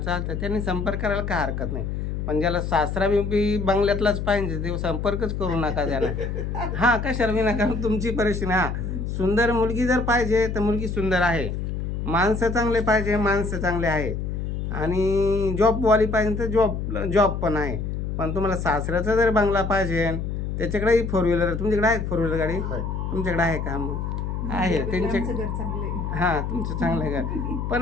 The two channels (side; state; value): left; noise; hum, 3 dB below the sound